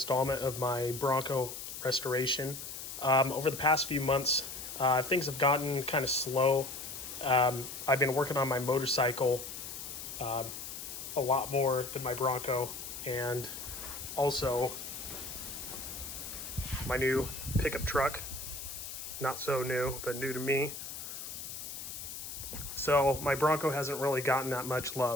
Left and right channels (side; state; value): left; noise; hiss, 8 dB below the sound